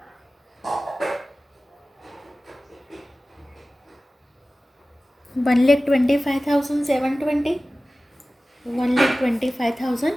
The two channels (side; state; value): both; normal; correlation 0.96